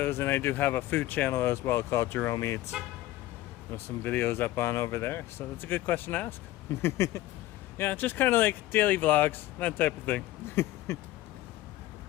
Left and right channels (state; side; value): quieter; right; 15.8 dB